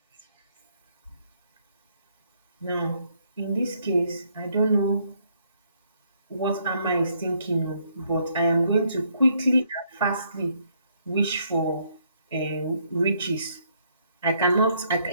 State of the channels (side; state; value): both; inverted; correlation -0.70